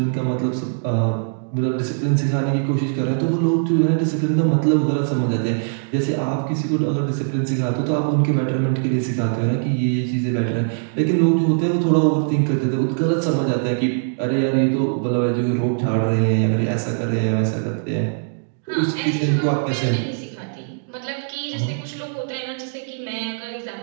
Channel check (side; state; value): left; silent; digital silence